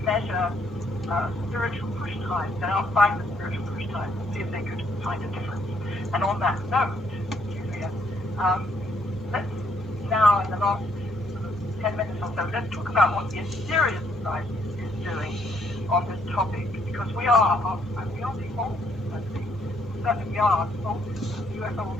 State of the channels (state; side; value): normal; both; correlation 0.70